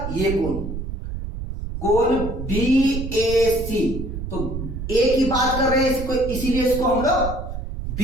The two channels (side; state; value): right; noise; rumble, 6 dB below the sound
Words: ये कोण, कोण बीएसी। तो ए की बात कर रहे हैं इसको, इसीलिए इसको हम लोग